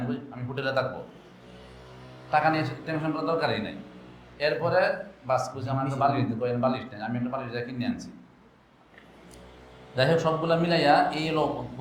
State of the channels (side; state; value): both; identical; correlation 1.00